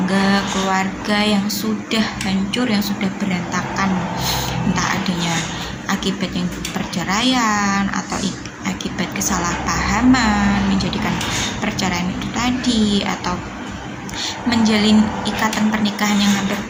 keluarga yang sudah hancur, yang sudah berantakan, entah adanya akibat yang perceraian atau akibat kesalahpahaman menjadikan perceraian itu tadi, atau menjalin ikatan pernikahan yang hampir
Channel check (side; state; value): both; identical; correlation 1.00